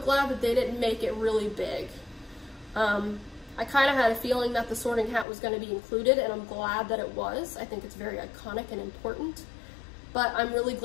glad that they didn't make it really big. I kind of had a feeling that the sorting hat was going to be included, and I'm glad that it was. I think it's very iconic and important. But I'm really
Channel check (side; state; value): right; drops out; at 5.2 s